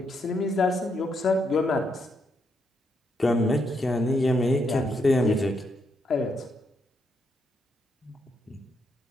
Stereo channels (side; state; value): both; normal; correlation 0.79